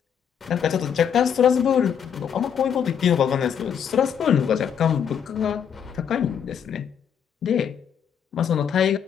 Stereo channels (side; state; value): right; quieter; 8.0 dB